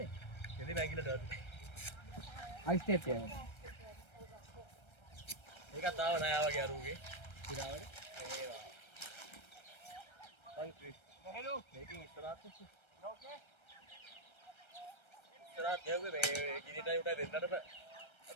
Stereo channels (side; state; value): right; late; 1.3 ms